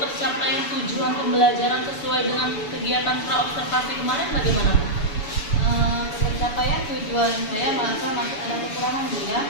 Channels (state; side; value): late; right; 7.0 ms